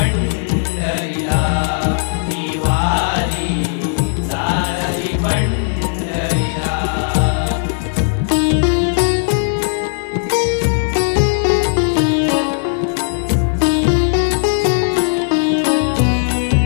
ही वारी चालली पंढरीला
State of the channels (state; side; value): silent; right; digital silence